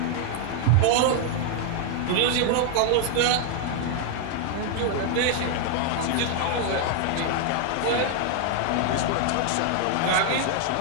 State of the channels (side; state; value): both; different; correlation 0.00